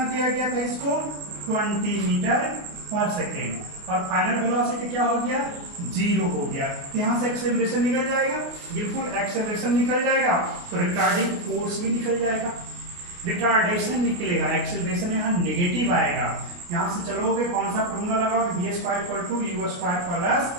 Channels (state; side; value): late; left; 28 ms